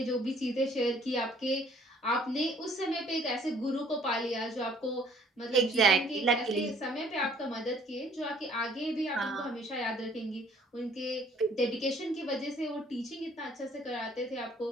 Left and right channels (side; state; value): both; normal; correlation 0.59